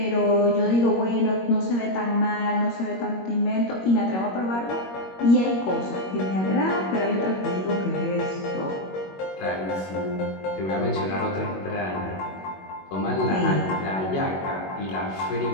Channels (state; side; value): late; right; 21 ms